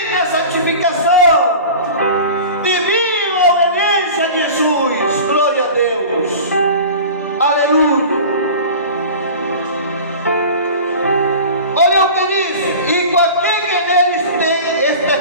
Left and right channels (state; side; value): inverted; both; correlation -0.37